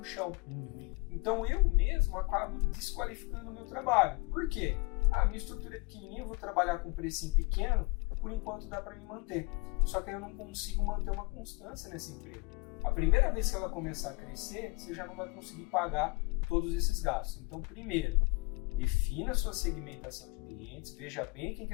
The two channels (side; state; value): right; quieter; 26.7 dB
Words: chão. Então eu mesmo acabo desqualificando o meu trabalho. Por quê? Minha estrutura é pequenininha, eu vou trabalhar com um precinho pequeno, por enquanto dá para me manter. Só que eu não consigo manter uma constância nesse emprego. A primeira vez que ela começar a crescer, você já não vai conseguir pagar todos esses gastos. Então, primeiro, defina a sua segmentação de clientes, veja bem quem que